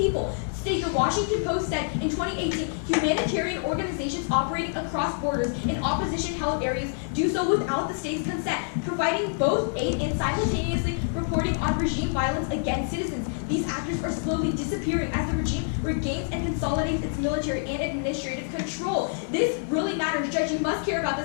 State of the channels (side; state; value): right; silent; 60 dB below the other